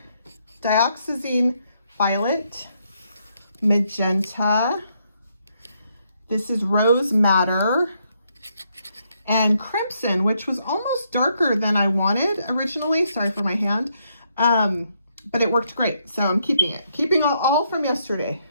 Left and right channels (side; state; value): both; inverted; correlation -0.75